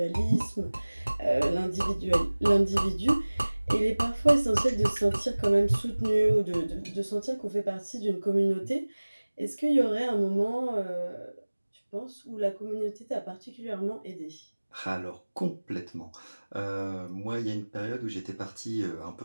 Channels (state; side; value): inverted; both; correlation -1.00